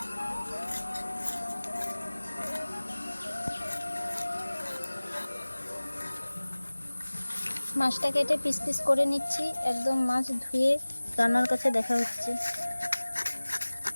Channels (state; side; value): inverted; both; correlation -1.00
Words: মাছটা কেটে পিস পিস করে নিচ্ছি। একদম মাছ ধুয়ে রান্নার কাছে দেখা হচ্ছে।